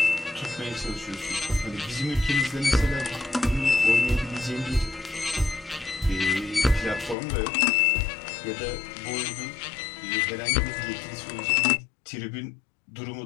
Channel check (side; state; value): right; drops out; at 7.2 s